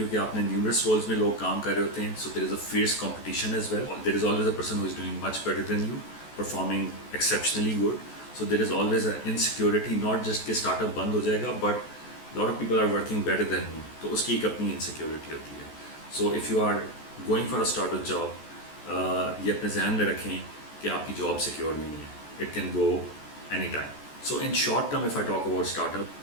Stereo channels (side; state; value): right; late; 14 ms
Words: आपने न्यूमरस रोल्स में लोग काम कर रहे होते हैं, so there is a fierce competition as well, there is always a person who is doing much better than you, performing exceptionally good. So there is always a insecurity, not just कि startup बंद हो जाएगा, but lot of people are working better than you, तो उसकी एक अपनी insecurity होती है. So if you are going for a startup job, ये अपने जहन में रखें कि आपकी जॉब सिक्योर नहीं है, it can go any time. So in short term, if I talk about startup,